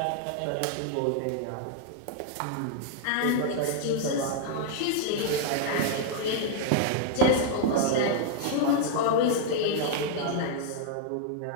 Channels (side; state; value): both; different; correlation 0.00